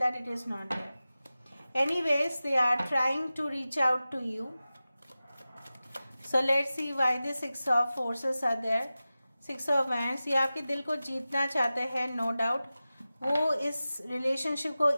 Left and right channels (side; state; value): both; inverted; correlation -0.95